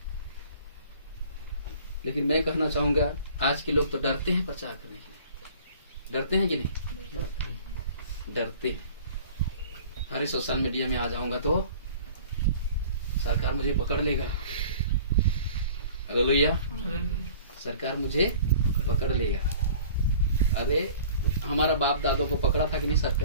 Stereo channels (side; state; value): both; inverted; correlation -0.47